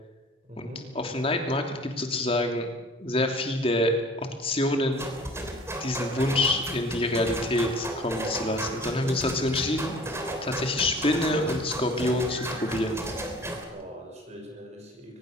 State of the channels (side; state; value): both; normal; correlation 0.47